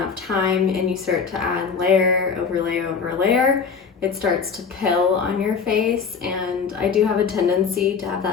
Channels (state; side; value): quieter; right; 5.9 dB